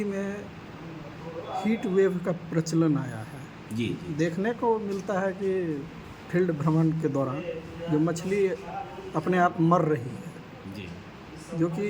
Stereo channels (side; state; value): both; identical; correlation 1.00